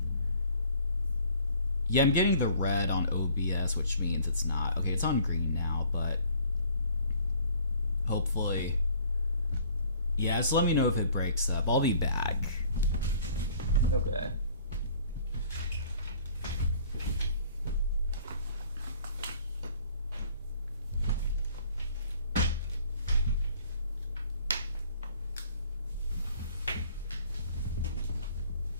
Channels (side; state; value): both; inverted; correlation -0.54